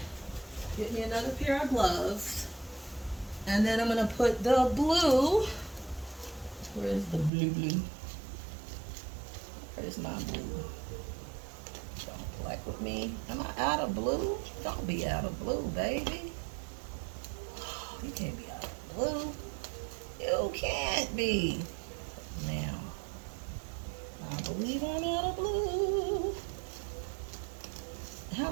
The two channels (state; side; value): drops out; left; at 7.3 s